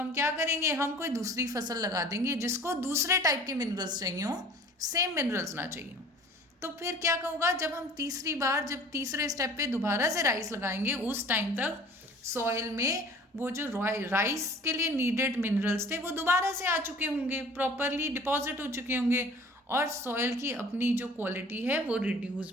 क्या करेंगे, हम कोई दूसरी फसल लगा देंगे जिसको दूसरे टाइप के मिनरल्स चाहिए हो, सेम मिनरल्स ना चाहिए हो। तो फिर क्या होगा, जब हम तीसरी बार, जब तीसरे स्टेप पे दोबारा से राइस लगाएंगे, उस टाइम तक सॉइल में वो जो राइस के लिए नीडेड मिनरल्स थे वो दोबारा से आ चुके होंगे, प्रॉपरली डिपॉजिट हो चुके होंगे, और सॉइल की अपनी जो क्वालिटी है वो रिड्यूस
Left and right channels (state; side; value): normal; both; correlation 0.47